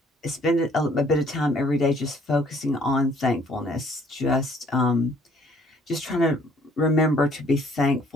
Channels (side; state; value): both; normal; correlation 0.60